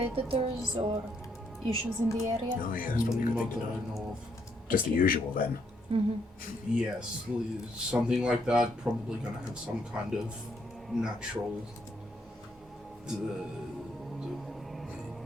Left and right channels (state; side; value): normal; both; correlation 0.73